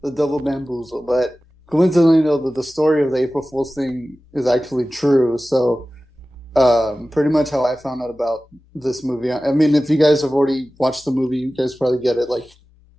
the double bamboozle, but coincidentally, though, the story of the April Fool's thing is actually true. So, pretty much how I found out about this movie. I mean, if you guys have already watched the movie, you guys probably get it. Like,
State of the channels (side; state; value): both; normal; correlation 0.96